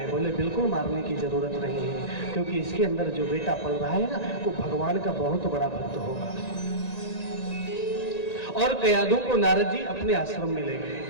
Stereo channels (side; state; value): right; late; 1.9 ms